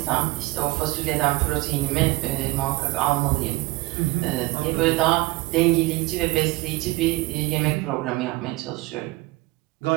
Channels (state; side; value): quieter; left; 20.7 dB